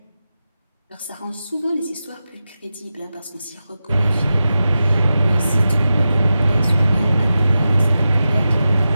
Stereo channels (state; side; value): inverted; both; correlation -0.92